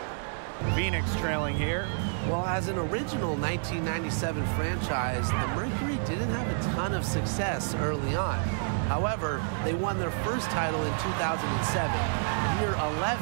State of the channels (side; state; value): left; silent; digital silence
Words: Phoenix trailing here. Well, as an original 1997 franchise, the Mercury didn't have a ton of success early on. However, they won their first title in 2007, year